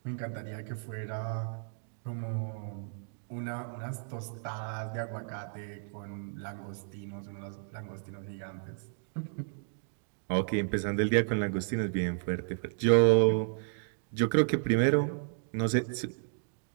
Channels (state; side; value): silent; left; digital silence